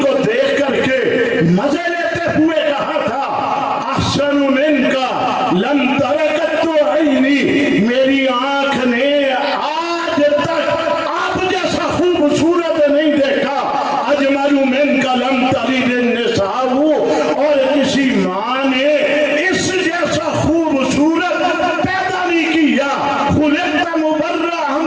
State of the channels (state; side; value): identical; both; correlation 1.00